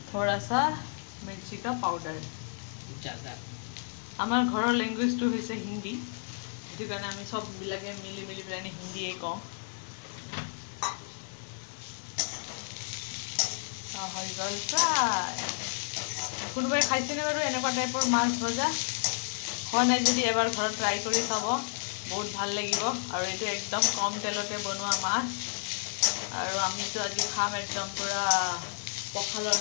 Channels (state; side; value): silent; right; digital silence